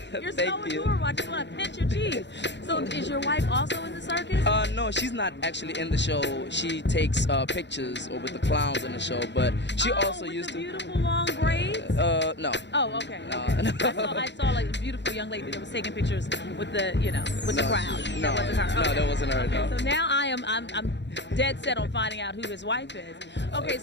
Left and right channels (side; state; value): right; late; 0.52 ms